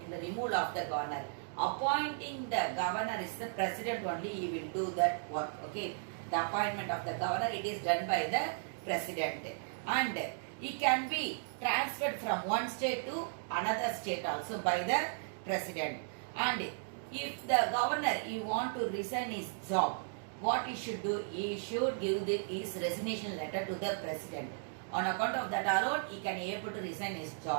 in the removal of the governor. Appointing the governor is the president only, he will do that work. Okay, the appointment of the governor it is done by the president, and he can be transferred from one state to another state also by the president. And if the governor he want to resign his job, what he should do? He should give his resignation letter to the president. On account of that alone, he can able to resign his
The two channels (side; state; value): left; silent; digital silence